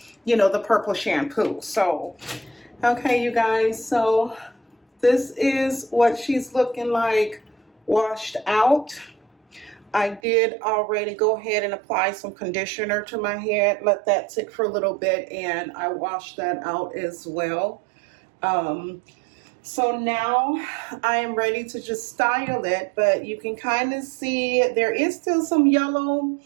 purple shampoo. So, okay, you guys, so this is what she's looking like washed out. I did already go ahead and apply some conditioner to my head, let that sit for a little bit, and I washed that out as well. So now I am ready to just style it, but you can kind of see there is still some yellow.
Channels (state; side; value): drops out; left; at 10.2 s